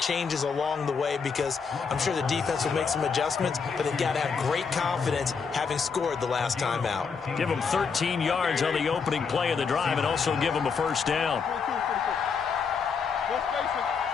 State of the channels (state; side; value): quieter; right; 5.7 dB